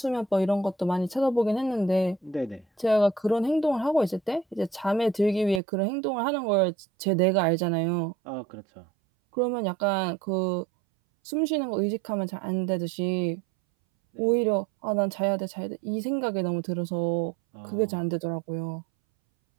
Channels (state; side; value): drops out; left; at 5.6 s